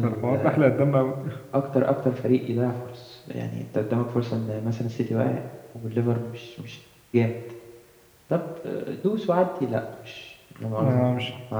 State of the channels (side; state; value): both; identical; correlation 1.00